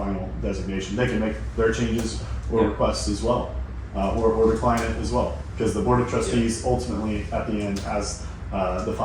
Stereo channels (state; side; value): identical; both; correlation 1.00